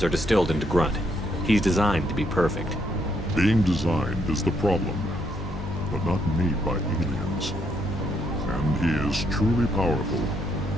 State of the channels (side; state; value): both; normal; correlation 0.74